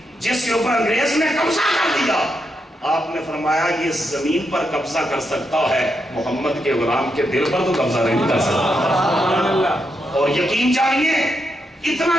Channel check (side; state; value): both; normal; correlation 0.82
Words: جس کے اوپر انگریز نے قبضہ کر دیا۔ آپ نے فرمایا یہ زمین پر قبضہ کر سکتا ہے، محمد کے غلام کے دل پر تو قبضہ نہیں کر سکتا۔ اور یقین جانیے